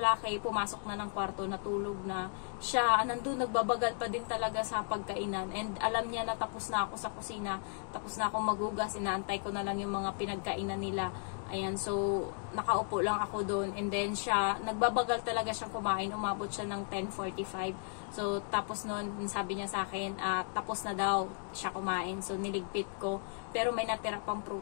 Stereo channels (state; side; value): silent; right; 54 dB below the other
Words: pumasok na ng kwarto, natulog na siya. Nandun nagbabagal pa din talaga sa pagkainan, and alam niya na tapos na ako sa kusina, tapos na ako maghugas, inaantay ko na lang yung mga pinagkainan nila. Ayan, so nakaupo lang ako doon, and then siya, nagbabagal talaga siyang kumain, umabot siya ng 10:45. So tapos noon, sabi niya sa akin, tapos na daw siya kumain. So niligpit ko, pero may natira pang